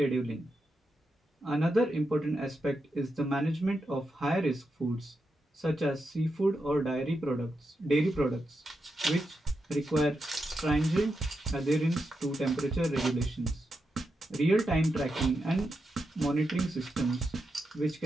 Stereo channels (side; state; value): both; normal; correlation 0.86